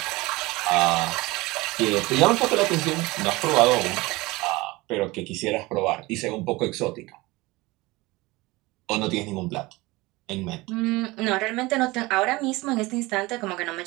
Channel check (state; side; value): quieter; left; 21.7 dB